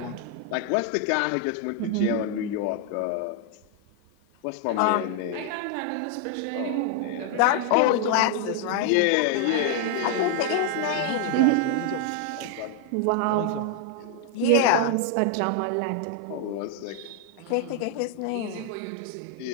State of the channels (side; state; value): both; different; correlation 0.00